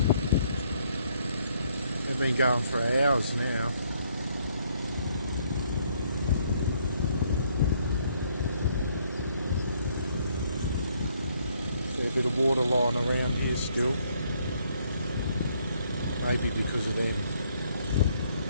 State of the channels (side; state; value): both; inverted; correlation -0.69